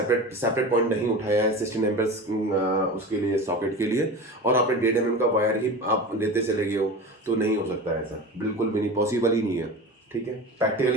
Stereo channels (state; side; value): normal; both; correlation 0.31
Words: पॉइंट नहीं उठाया है 16 एम्पेयर्स उसके लिए, सॉकेट के लिए, और आपने 1.5 mm का वायर ही आप लेते चले गए हो, तो नहीं हो सकता है ऐसा, बिल्कुल भी नहीं, पॉसिबल ही नहीं है। ठीक है,